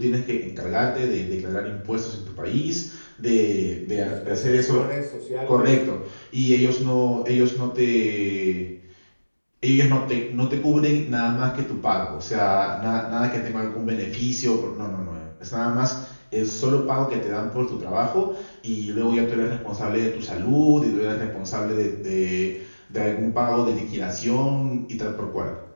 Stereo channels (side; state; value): both; inverted; correlation -1.00